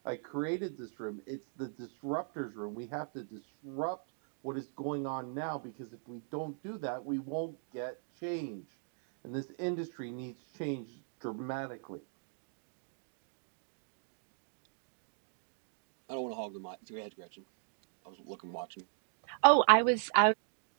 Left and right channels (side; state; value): left; silent; digital silence